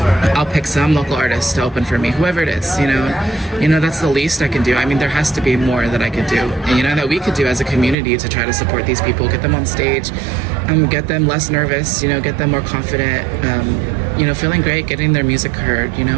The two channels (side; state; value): left; drops out; at 8.0 s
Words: I'll pick some local artist to open for me, whoever it is, that's the least I can do. I mean, there has to be more that I could do, and, that we could do as a community to try to support these people, get them on stage, get them less nervous, get them more confident, feeling great, getting their music heard,